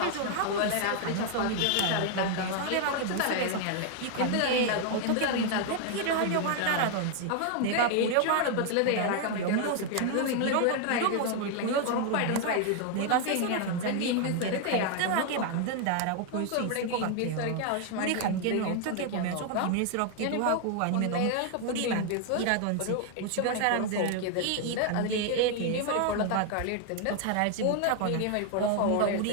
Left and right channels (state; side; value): different; both; correlation 0.00